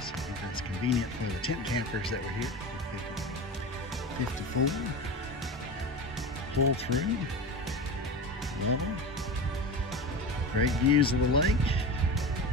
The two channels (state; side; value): normal; both; correlation 0.27